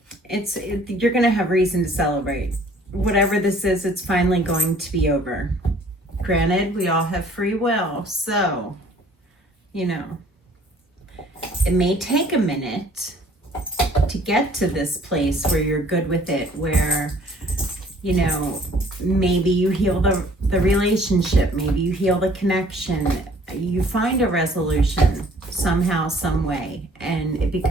You're going to have reason to celebrate. Whatever this is, it's finally going to be over. Granted, we all have free will, so, you know, it may take a minute to get to this place where you're good with it, where, you know, maybe you heal the relationship, maybe you heal the connection, you find a resolution somehow, some way, and it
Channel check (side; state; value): both; normal; correlation 0.56